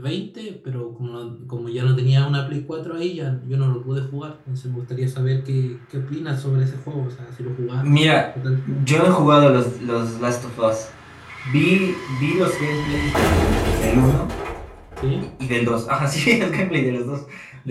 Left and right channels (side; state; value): both; identical; correlation 1.00